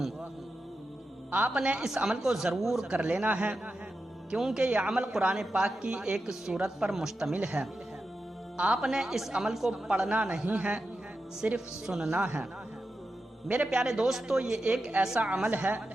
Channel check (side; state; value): both; normal; correlation 0.90